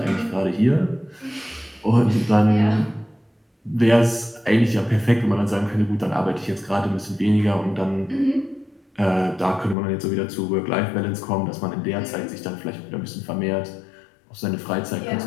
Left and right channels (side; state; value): right; drops out; at 9.8 s